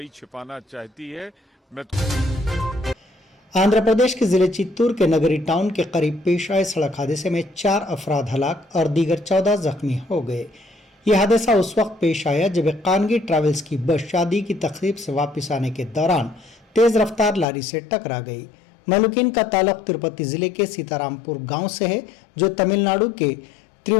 छिपाना चाहती है। آندھرا پردیش کے ضلع چتور کے نگری ٹاؤن کے قریب پیش آئے سڑک حادثے میں 4 افراد ہلاک اور دیگر 14 زخمی ہو گئے۔ یہ حادثہ اس وقت پیش آیا جب ایک خانگی ٹریولز کی بس شادی کی تقریب سے واپس آنے کے دوران تیز رفتار لاری سے ٹکرا گئی۔ مہلوکین کا تعلق تروپتی ضلع کے سیتارام پور گاؤں سے ہے، جو تمل ناڈو کے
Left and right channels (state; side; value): drops out; right; at 17.4 s